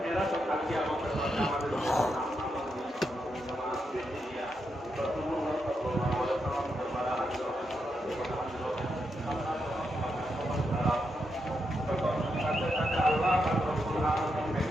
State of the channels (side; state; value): both; normal; correlation 0.83